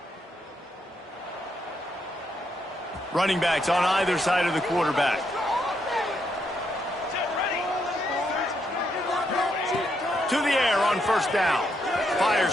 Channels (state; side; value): normal; both; correlation 0.78